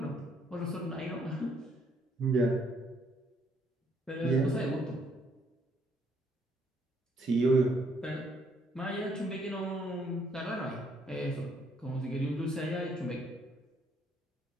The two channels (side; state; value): both; normal; correlation 0.69